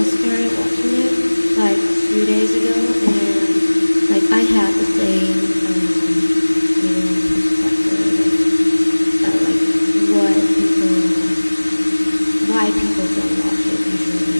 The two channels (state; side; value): inverted; both; correlation -1.00